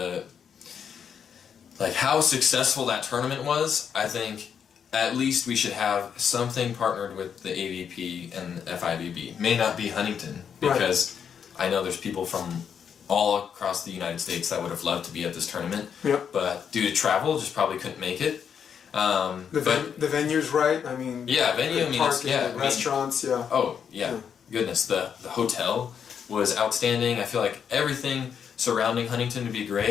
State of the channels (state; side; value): quieter; right; 7.6 dB